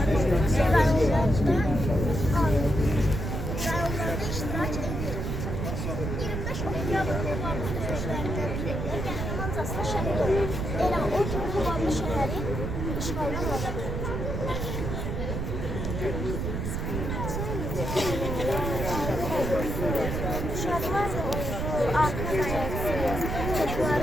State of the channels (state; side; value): noise; right; rumble, 3 dB below the sound